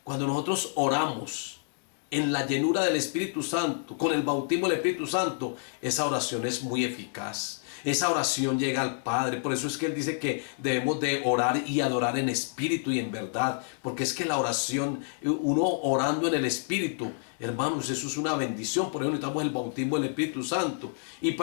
Cuando nosotros oramos en la llenura del Espíritu Santo, con el bautismo del Espíritu Santo, esa oración es muy eficaz. Esa oración llega al Padre. Por eso es que Él dice que debemos de orar y adorar en espíritu y en verdad. Porque es que la oración, uno orando en el Espíritu, hermanos, eso es una bendición. Por eso necesitamos el bautismo del Espíritu Santo. Y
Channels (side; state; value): right; silent; digital silence